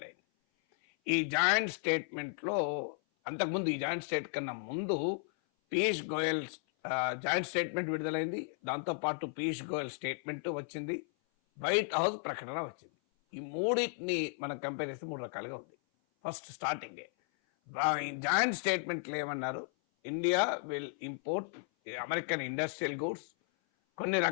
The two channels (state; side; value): silent; right; 55 dB below the other